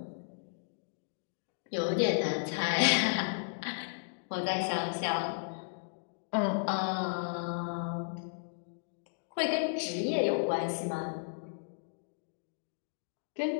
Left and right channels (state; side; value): silent; right; digital silence